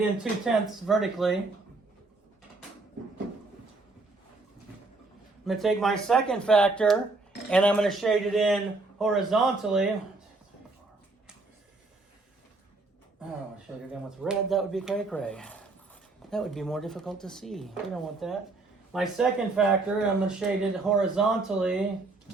2 tenths vertically. I'm going to take my second factor and I'm going to shade it in horizontally. Oh, shade it in with red. That would be cray-cray. That would be more difficult to see. We don't want that. My second factor, I'm going to shade it horizontally.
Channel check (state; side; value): quieter; left; 3.4 dB